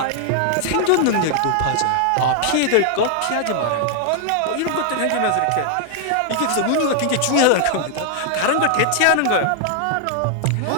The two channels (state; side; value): different; both; correlation 0.00